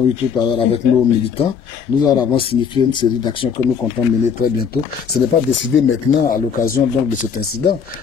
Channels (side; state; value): right; quieter; 6.7 dB